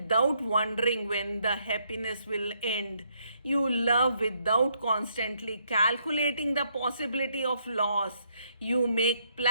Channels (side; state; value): both; inverted; correlation -0.73